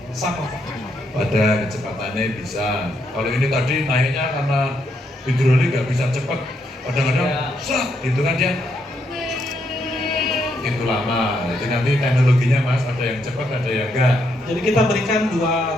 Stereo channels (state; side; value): normal; both; correlation 0.77